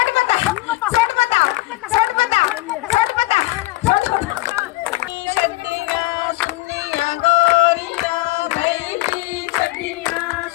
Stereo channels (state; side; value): quieter; right; 19.9 dB